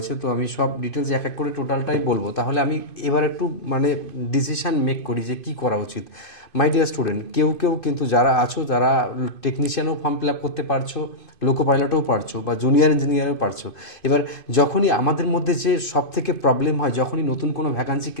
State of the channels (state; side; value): late; right; 2.5 ms